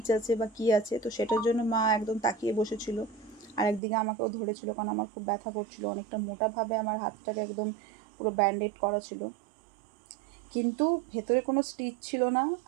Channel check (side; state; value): left; drops out; at 3.8 s